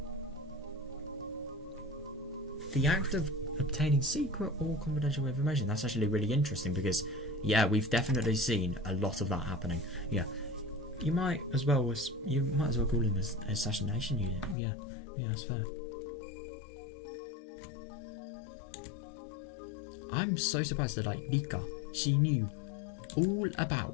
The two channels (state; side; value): drops out; right; at 14.6 s